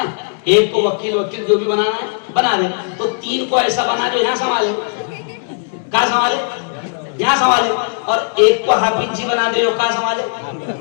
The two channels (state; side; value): silent; right; digital silence